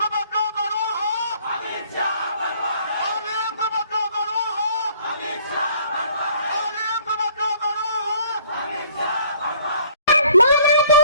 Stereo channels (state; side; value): inverted; both; correlation -0.58